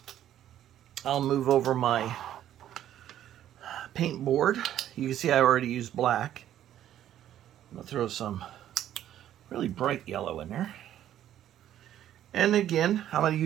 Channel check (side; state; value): left; quieter; 11.5 dB